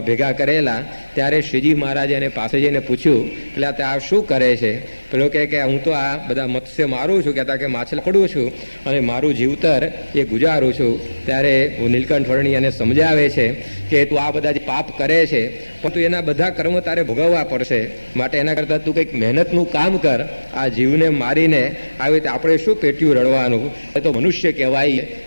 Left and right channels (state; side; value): inverted; both; correlation -1.00